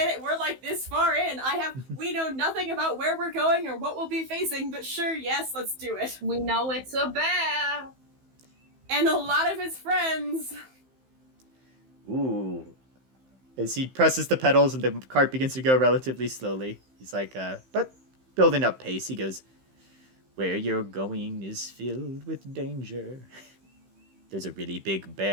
it. We're like this far in. We know nothing about where we're going or what we'll be facing, but sure, yes, let's do it. We know it's a bear. And a lot of his friends. Ooh. As he presses the pedals and the cart begins to go relatively slowly, he's like, but building up pace, he goes, where you're going is filled with danger. There's a really big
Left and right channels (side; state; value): left; late; 15 ms